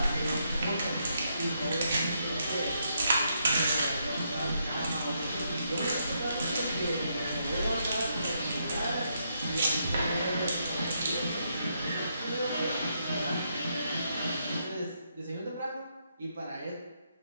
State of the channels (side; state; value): both; inverted; correlation -0.78